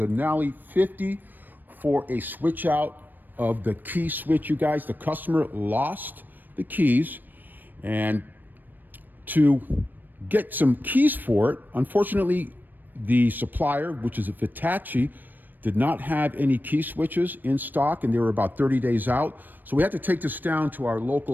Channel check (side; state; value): left; late; 0.090 ms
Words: 50 for a switch out of the key switch. You guys, the customer lost the keys, and to get some keys for it, unfortunately the supplier, which is a Vitacci, did not have any key switches in stock, and they were about 30 days out. So we had to take this down to our